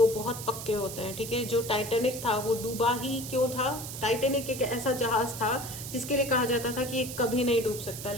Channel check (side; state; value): right; noise; hiss, 9 dB below the sound